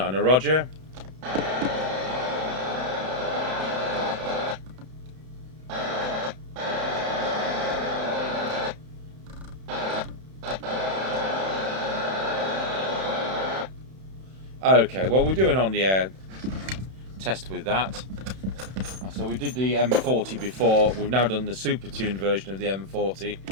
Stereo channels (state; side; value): late; left; 31 ms